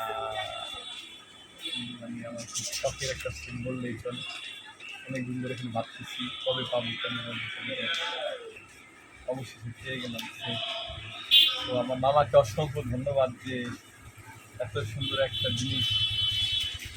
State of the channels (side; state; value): both; identical; correlation 1.00